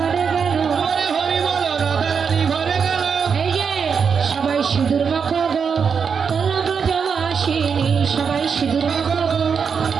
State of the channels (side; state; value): left; quieter; 6.3 dB